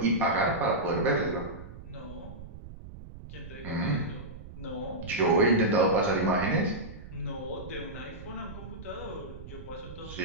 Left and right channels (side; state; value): right; noise; rumble, 13 dB below the sound